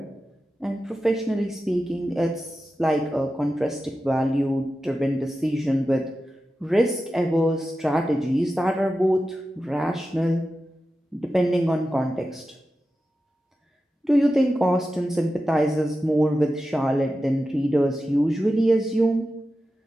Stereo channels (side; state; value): both; normal; correlation 0.92